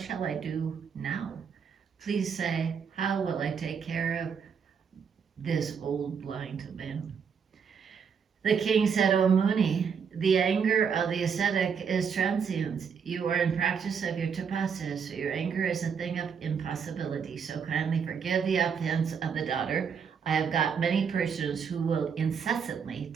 I do now? Please say, how will I take care of this old blind man? The king said, O Muni, the anger of the ascetic is transient. You are in practice of your tapasya, so your anger is a thing of impossibility. So kindly forgive the offense of the daughter. I have got many persons who will incessantly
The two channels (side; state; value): left; quieter; 6.6 dB